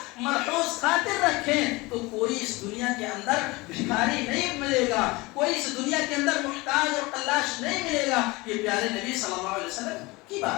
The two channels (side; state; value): right; quieter; 23.1 dB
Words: مرحوظ خاطر رکھیں، تو کوئی اس دنیا کے اندر بھکاری نہیں ملے گا، کوئی اس دنیا کے اندر محتاج اور قلاش نہیں ملے گا۔ یہ پیارے نبی صلی اللہ علیہ وسلم کی